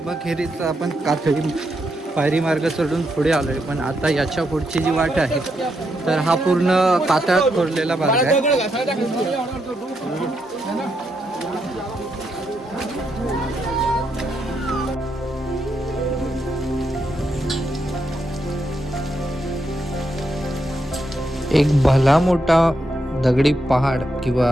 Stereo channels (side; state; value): both; normal; correlation 0.81